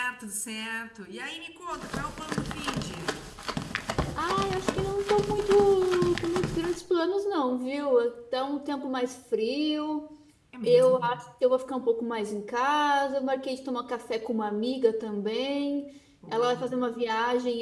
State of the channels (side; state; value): both; identical; correlation 1.00